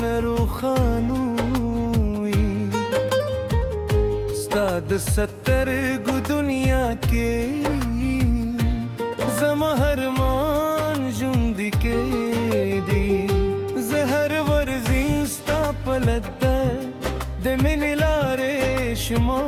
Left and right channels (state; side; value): identical; both; correlation 1.00